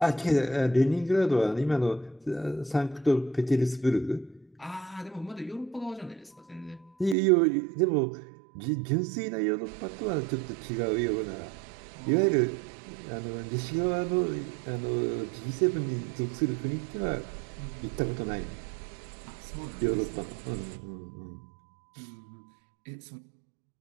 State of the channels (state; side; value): drops out; left; at 7.2 s